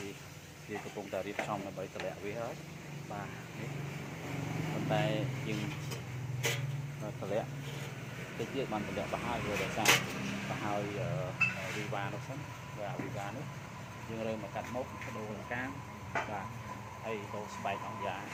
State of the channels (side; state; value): both; identical; correlation 1.00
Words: វាកំពុងតែរៀបចំដើម្បីតម្លាក់វាហើយបាទនេះប៉ុន្តែយើងតម្លាក់តិចទៀតបានតម្លាក់បោះហើយវាដោយសារបោះហើយវីវ៉ានោះសិនបាទវីវ៉ានេះយើងរើមកកាត់មុខដូរកាំបាទហើយដូរស្បែកអង្គយ៉ា